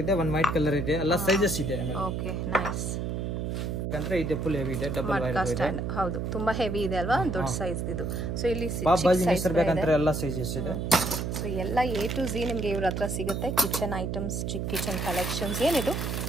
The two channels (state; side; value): noise; right; hum, 2 dB below the sound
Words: ಇದೆ, 1 ವೈಟ್ ಕಲರ್ ಇದೆ, ಎಲ್ಲ ಸೈಜಸ್ ಇದೆ. Okay, nice. ಬೇಕಂದ್ರೆ ಇದೆ ಫುಲ್ ಹೆವಿ ಇದೆ, ಡಬಲ್ ವೈರ್ ಇದೆ. ಹೌದು, ತುಂಬಾ ಹೆವಿ ಇದೆ ಅಲ್ವಾ, ದೊಡ್ಡ ಸೈಜ್ ಇದು. ಸೊ ಇಲ್ಲಿ ಸೈಜ್ ಬೇಕಂದ್ರೆ ಎಲ್ಲ ಸೈಜಸ್ ಇದೆ. ಸೊ ಎಲ್ಲ A to Z ನಿಮಗೆ ಇವ್ರ ಹತ್ರ ಸಿಗುತ್ತೆ. ಕಿಚನ್ ಐಟಮ್ಸ್, ಚಿಕ್ಕ ಕಿಚನ್ ಕಲೆಕ್ಷನ್ಸ್. ಏನಿದು?